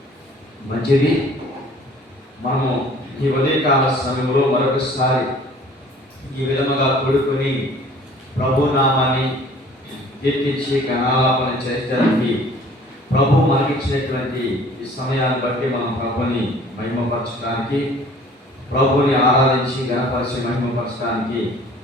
మంచిది, మనము ఈ ఉదయకాల సమయంలో మరొకసారి ఈ విధముగా కూడుకొని ప్రభు నామాన్ని కీర్తించి గణాలాపన చేయడానికి ప్రభు మనకిచ్చినటువంటి ఈ సమయాన్ని బట్టి మనం ప్రభుని మహిమపరచడానికి, ప్రభుని ఆరాధించి గణపరిచి మహిమపరచడానికి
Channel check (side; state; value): both; normal; correlation 0.51